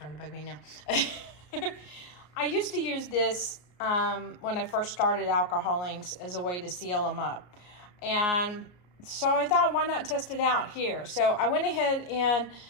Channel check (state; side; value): late; right; 33 ms